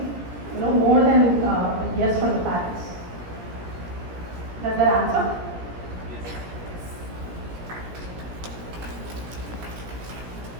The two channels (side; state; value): left; late; 17 ms